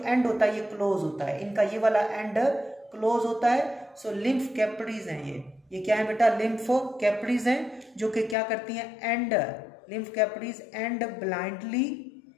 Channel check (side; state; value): right; drops out; at 8.3 s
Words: एंड होता है ये क्लोज होता है, इनका ये वाला एंड क्लोज होता है। सो लिम्फ कैपिलरीज हैं ये क्या है बेटा, लिम्फ कैपिलरीज हैं जो कि क्या करती हैं, and lymph capillaries and blindly